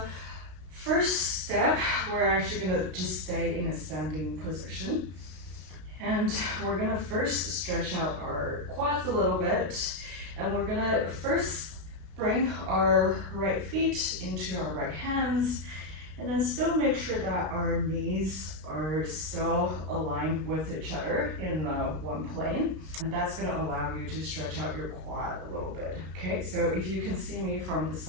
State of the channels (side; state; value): left; late; 32 ms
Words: first step, we're actually gonna just stay in a standing position. And we're gonna first stretch out our quads a little bit. And we're gonna first bring our right feet into our right hands. And then still make sure that our knees are still aligned with each other in one plane. And that's gonna allow you to stretch out your quad a little bit. Okay, so if you can see me from the